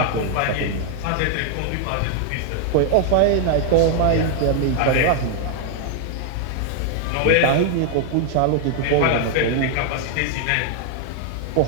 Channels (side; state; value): both; different; correlation 0.00